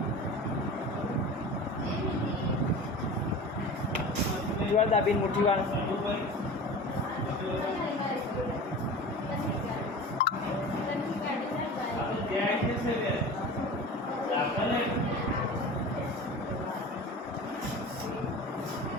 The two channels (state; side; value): normal; both; correlation 0.35